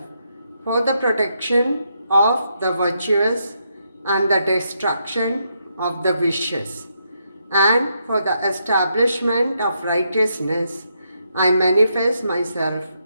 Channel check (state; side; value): inverted; both; correlation -0.79